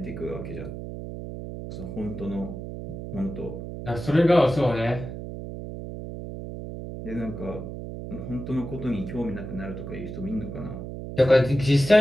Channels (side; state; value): right; noise; hum, 8 dB below the sound